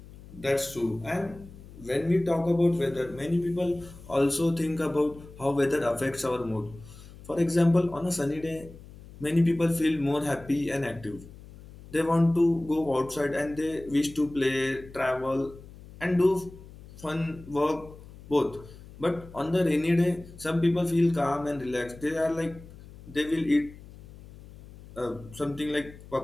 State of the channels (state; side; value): noise; left; hum, 18 dB below the sound